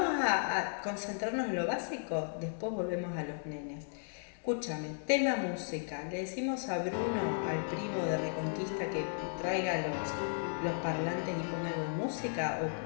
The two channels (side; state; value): right; silent; 54 dB below the other